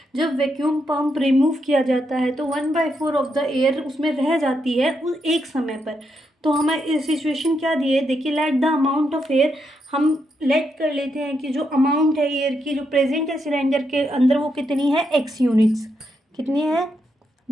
जब vacuum pump remove किया जाता है तो 1/4 ऑफ द एयर उसमें रह जाती है उस एक समय पर। तो हमें सिचुएशन क्या दी है, देखिए, let the amount of air, हम लेट कर लेते हैं कि जो अमाउंट है एयर की जो प्रेजेंट है सिलेंडर के अंदर वो कितनी है, x यूनिट्स। कितनी है,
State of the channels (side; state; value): both; normal; correlation 0.81